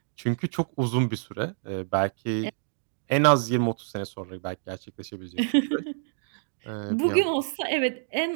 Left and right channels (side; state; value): left; silent; digital silence